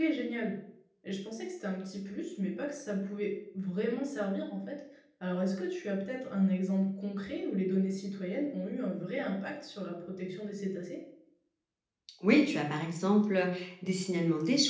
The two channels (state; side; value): identical; both; correlation 1.00